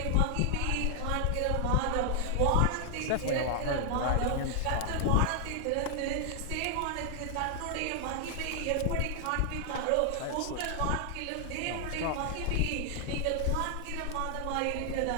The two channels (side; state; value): both; different; correlation 0.00